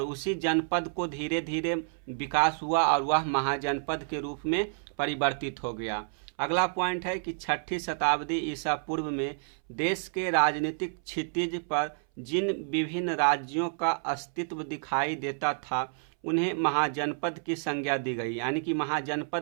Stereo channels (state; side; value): silent; left; 58 dB below the other